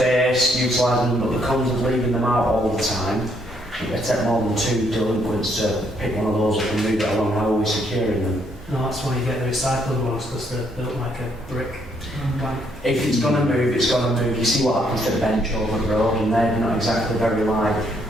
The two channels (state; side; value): normal; both; correlation 0.71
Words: utilising them, but the cons of leaving them out all the time. It take more than 2 delinquents to pick one of those up and move it along. How are we securing them? No, that's why you get the recycled ones, because they're built like a brick. If it's going to move, it's going to move. You see what happens to the bench over the road, and they're not exactly very light,